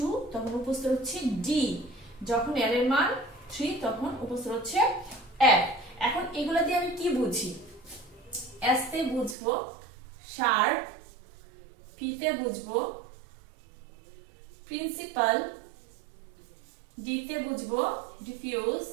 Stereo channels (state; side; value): drops out; left; at 9.3 s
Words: তখন উপস্তর হচ্ছে d যখন l এর মান 3 তখন উপস্তর হচ্ছে f এখন এগুলা দিয়ে আমি কি বুঝি s তে বুঝবো শার্প p তে বুঝবো প্রিন্সিপাল d তে বুঝবো ডিফিউজ